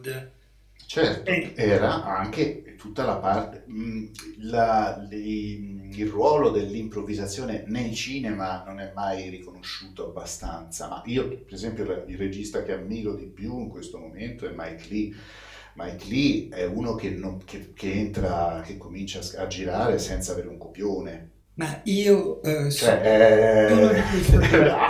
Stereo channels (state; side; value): identical; both; correlation 1.00